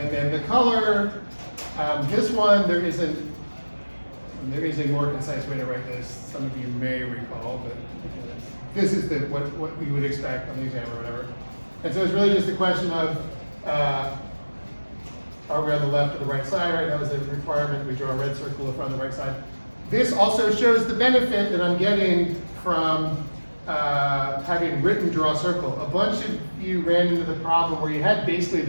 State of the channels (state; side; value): inverted; both; correlation -1.00